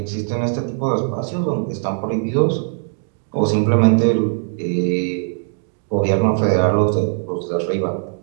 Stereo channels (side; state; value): left; silent; 63 dB below the other